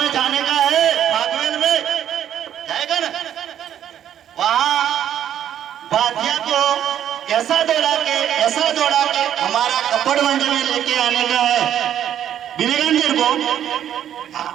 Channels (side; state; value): left; quieter; 10.3 dB